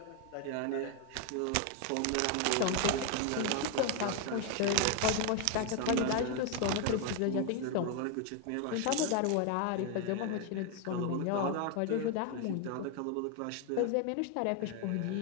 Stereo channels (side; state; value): both; different; correlation 0.01